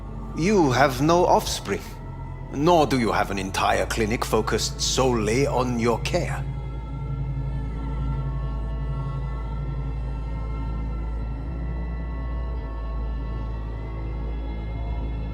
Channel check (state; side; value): identical; both; correlation 1.00